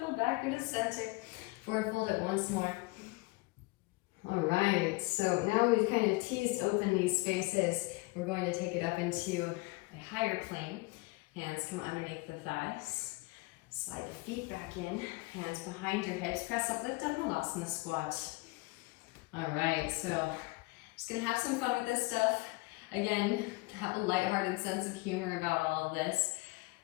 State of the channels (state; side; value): quieter; right; 24.1 dB